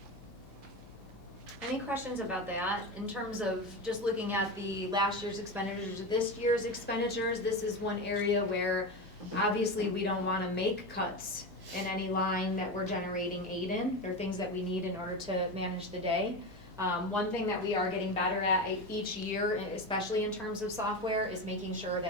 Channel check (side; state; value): both; normal; correlation 0.21